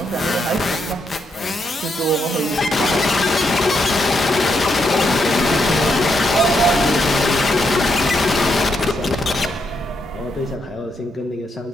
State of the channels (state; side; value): normal; both; correlation 0.79